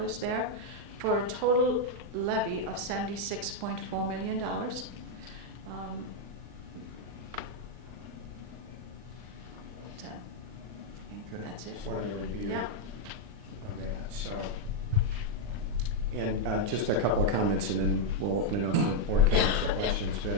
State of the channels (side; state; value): left; late; 39 ms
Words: there, for a total levy of $76.4 million. That's it. Just wanted to review Yeah. of that. So, and just a couple of comments, and then we'll open it up for board comments or questions.